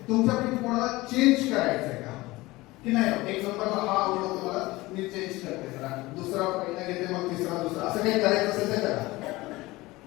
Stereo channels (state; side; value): quieter; right; 20.2 dB